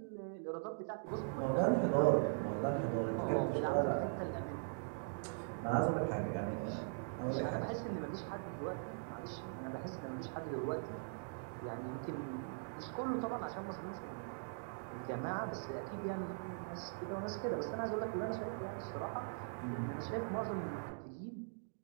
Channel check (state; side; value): silent; left; digital silence